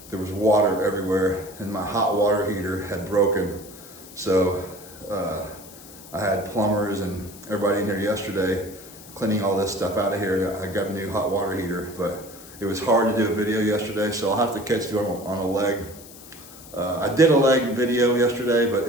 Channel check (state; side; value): noise; left; hiss, 18 dB below the sound